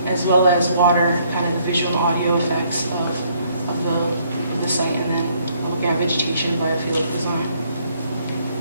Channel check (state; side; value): inverted; both; correlation -0.67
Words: as well as water, kind of the visual audio effects of the site, and then looking at vegetation and biophilic design.